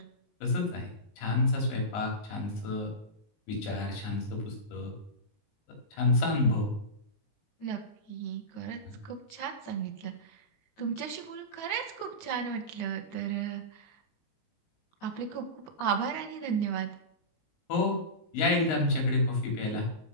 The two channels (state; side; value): late; right; 19 ms